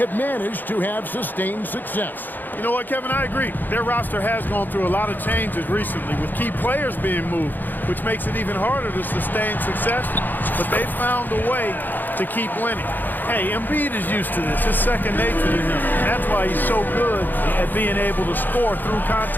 managed to have sustained success. You know what, Kevin? I agree. Their roster has gone through a lot of changes recently with key players being moved, which makes it even harder to sustain success. But they've found a way to keep winning. Hey, Embiid is used to this. It's second nature to him. And that's why he's so good at being able to score through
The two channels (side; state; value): right; late; 0.088 ms